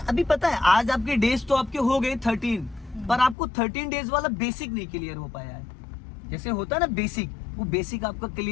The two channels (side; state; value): right; drops out; at 3.4 s